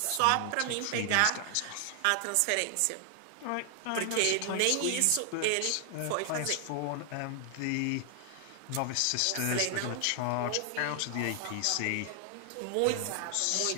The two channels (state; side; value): different; both; correlation 0.00